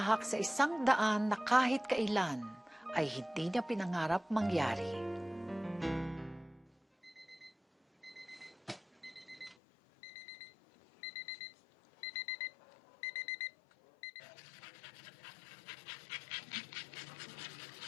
sa isang daan na kahit kailan ay hindi niya pinangarap mangyari.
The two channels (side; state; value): right; drops out; at 9.6 s